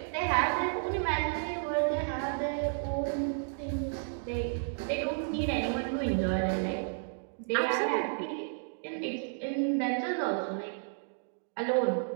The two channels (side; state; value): left; silent; digital silence